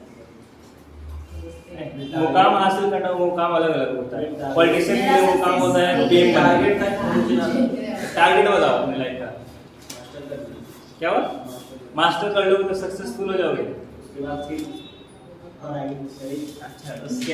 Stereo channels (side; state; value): both; identical; correlation 1.00